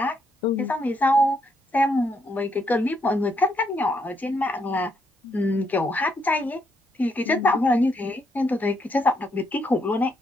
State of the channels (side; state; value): both; normal; correlation 0.76